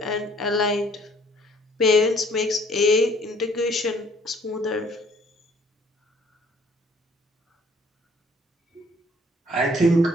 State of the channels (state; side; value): normal; both; correlation 0.59